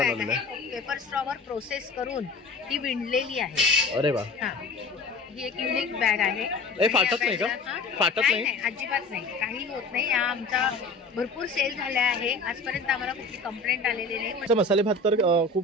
आहे. पेपर स्ट्रॉवर प्रोसेस करून ती विणलेली आहे. अरे वा, ही एक युनिक बॅग आहे. हे फाटत नाही का? फाटत नाही, अजिबात नाही, काही होत नाही. या आमचा भरपूर सेल झाला आहे. आजपर्यंत आम्हाला कुठली कंप्लेंट आलेली नाही. मसाले भात तर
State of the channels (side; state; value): right; quieter; 3.5 dB